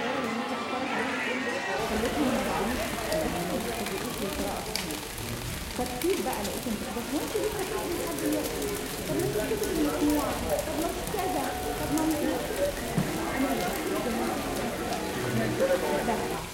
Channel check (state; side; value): identical; both; correlation 1.00